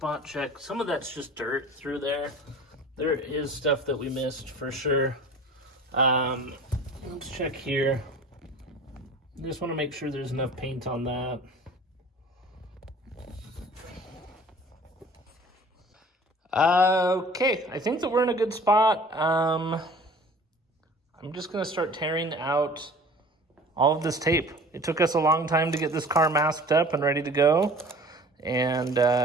check. Some of that's just dirt through there. There is stuff that we missed for sure. Let's check here. Just want to make sure there's enough paint on that. Okay, I think that we're in a good spot. I'm just gonna start tearing out all of this tape. It took us a long time to get this car masked up and ready to go, and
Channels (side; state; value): both; normal; correlation 0.45